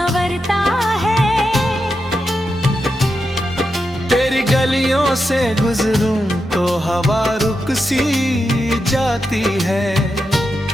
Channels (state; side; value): normal; both; correlation 0.87